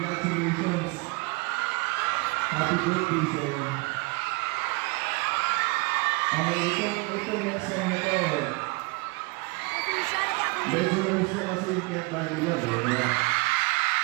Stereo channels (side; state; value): left; quieter; 27.7 dB